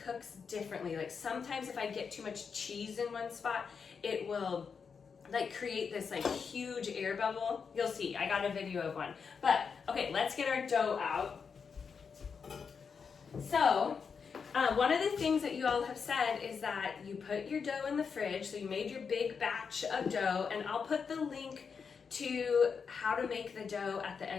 differently. Like sometimes if I get too much cheese in one spot, it will like create this like huge air bubble. You'll see, I got a video of one. But okay, let's get our dough out. So one of the things that you all have said is that you put your dough in the fridge, so you made your big batch of dough, and I'll put the link to how to make the dough at the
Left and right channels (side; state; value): right; quieter; 5.9 dB